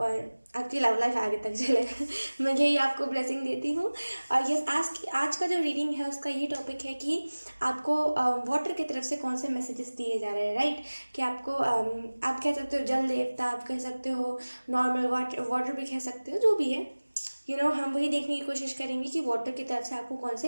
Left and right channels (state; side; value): inverted; both; correlation -1.00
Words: आपकी लव लाइफ आगे तक चले। मैं यही आपको ब्लेसिंग देती हूँ। और ये आज का जो रीडिंग है उसका ये टॉपिक है कि आपको वाटर की तरफ से कौन से मैसेजेस दिए जा रहे हैं, राइट। कि आपको आप कह सकते हो जल देवता, आप कह सकते हो नॉर्मल वाटर भी कह सकते हो, जो भी है हम वही देखने की कोशिश करेंगे कि वाटर की तरफ से आपको कौन